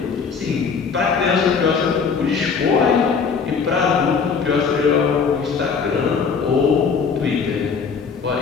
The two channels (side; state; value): right; quieter; 5.7 dB